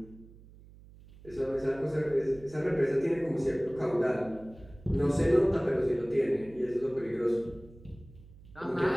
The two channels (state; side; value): noise; right; hum, 21 dB below the sound